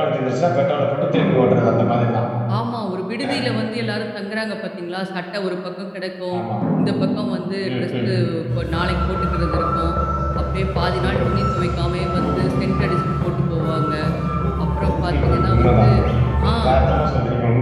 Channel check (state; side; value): identical; both; correlation 1.00